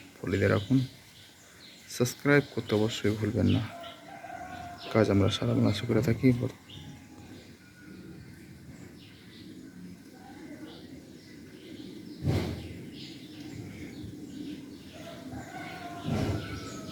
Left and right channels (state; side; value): identical; both; correlation 1.00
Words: ফলো দিয়ে রাখুন। সাবস্ক্রাইব করতে অবশ্যই ভুলবেন না। কাজ আমরা সারা বাংলাদেশে করে থাকি।